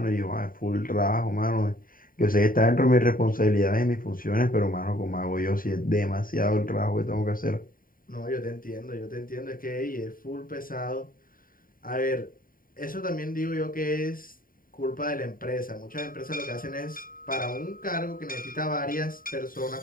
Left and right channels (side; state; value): right; late; 0.41 ms